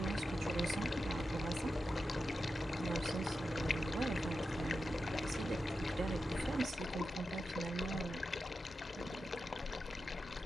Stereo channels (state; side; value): normal; both; correlation 0.90